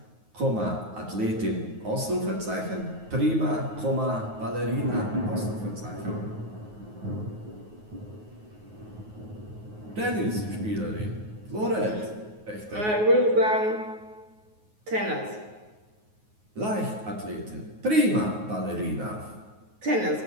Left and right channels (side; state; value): left; late; 9.5 ms